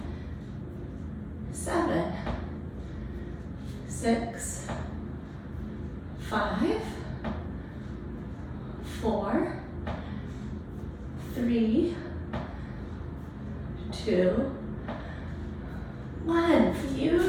7, 6, 5, 4, 3, 2, 1.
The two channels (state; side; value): identical; both; correlation 1.00